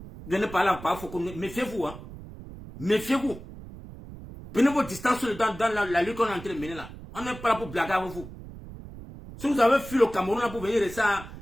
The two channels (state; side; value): noise; right; rumble, 14 dB below the sound